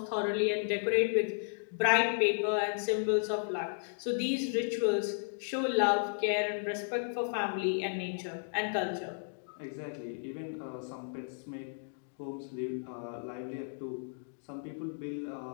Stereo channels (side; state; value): right; silent; digital silence